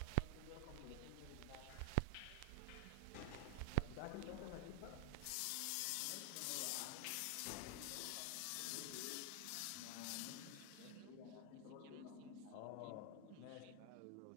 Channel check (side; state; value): both; different; correlation 0.00